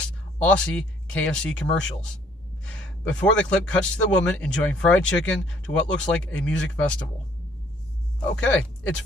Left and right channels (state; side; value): normal; both; correlation 0.62